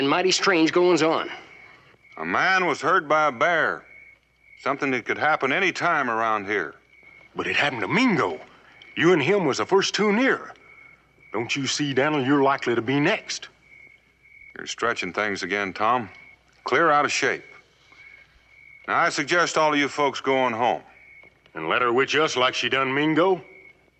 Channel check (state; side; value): identical; both; correlation 1.00